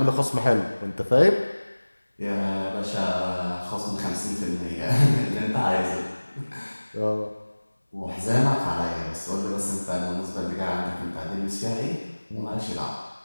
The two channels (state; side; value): inverted; both; correlation -1.00